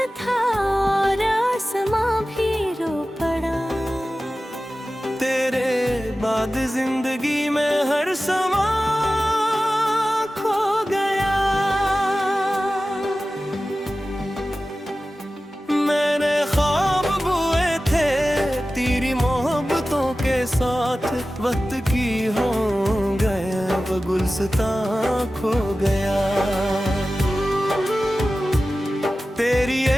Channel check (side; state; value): both; normal; correlation 0.95